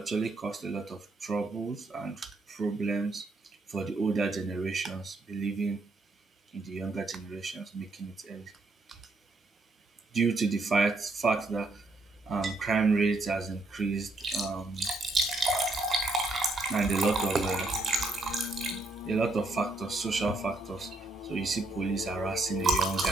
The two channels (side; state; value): left; quieter; 3.0 dB